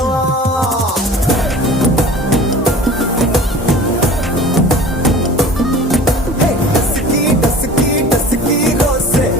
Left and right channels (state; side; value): normal; both; correlation 0.42